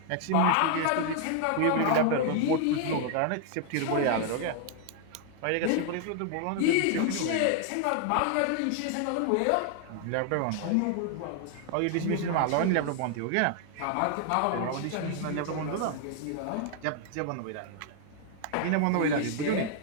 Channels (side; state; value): both; different; correlation 0.00